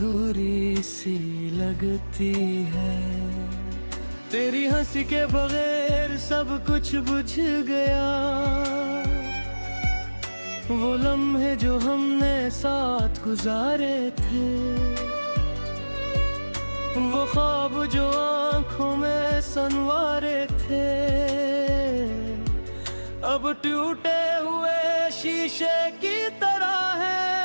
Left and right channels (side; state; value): both; inverted; correlation -1.00